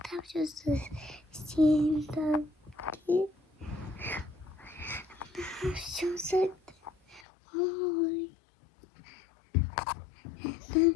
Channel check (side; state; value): right; drops out; at 7.2 s